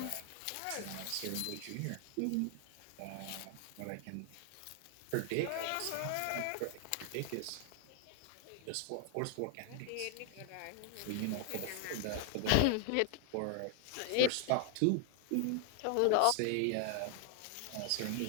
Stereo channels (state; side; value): different; both; correlation 0.00